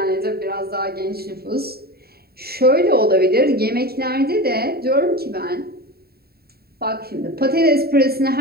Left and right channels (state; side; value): late; left; 0.45 ms